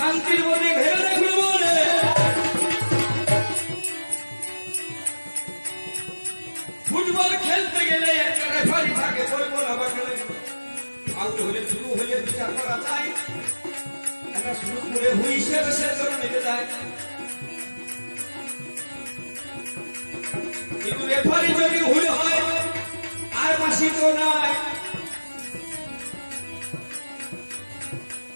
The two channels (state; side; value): inverted; both; correlation -1.00